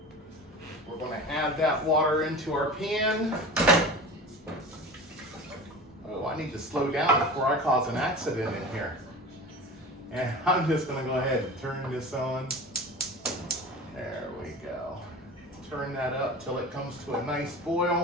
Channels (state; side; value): normal; both; correlation 0.34